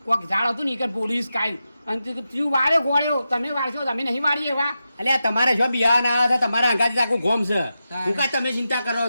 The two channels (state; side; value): inverted; both; correlation -0.90